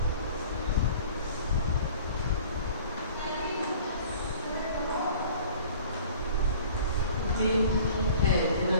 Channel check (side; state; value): both; inverted; correlation -0.47